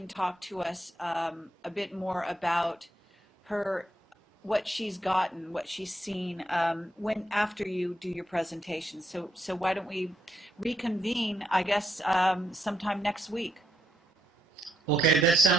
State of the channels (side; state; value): both; normal; correlation 0.79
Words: talk to us a bit more about her, what she's gotten, what she's seen when after you do your presentation. So why don't we reconvene, I guess, sometime next week? Okay, that